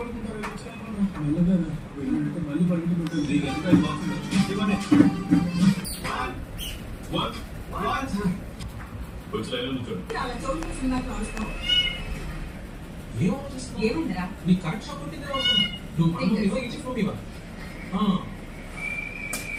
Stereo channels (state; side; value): identical; both; correlation 1.00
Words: మెల్లగా మళ్ళీ పడుకుంటుంది. ఏమైందిరా? నీ కరెక్ట్ షాప్ ఉంటుంది నువ్వు ఇచ్చిపోయివా?